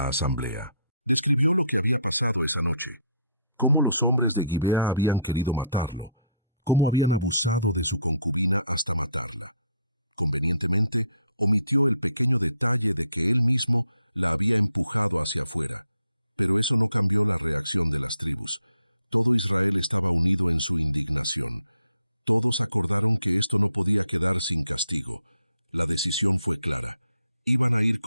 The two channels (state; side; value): inverted; both; correlation -0.68